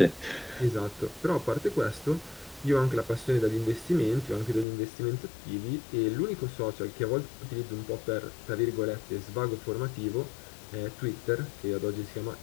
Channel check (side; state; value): right; drops out; at 4.7 s